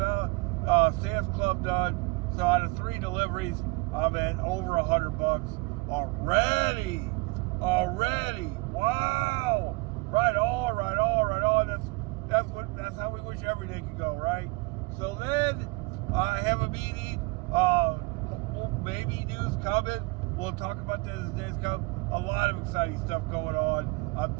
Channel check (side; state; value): left; quieter; 26.6 dB